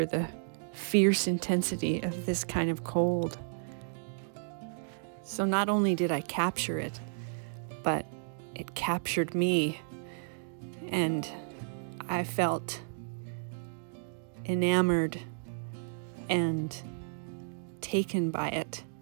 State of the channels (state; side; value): silent; left; digital silence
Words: the fierce intensity of this kind of cold. So not only did I capture it, but it captured me, and I felt enamored and taken by it